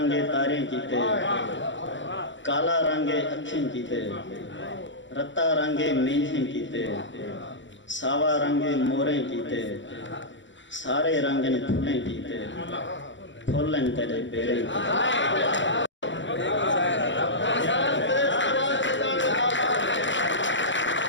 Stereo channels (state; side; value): late; right; 0.54 ms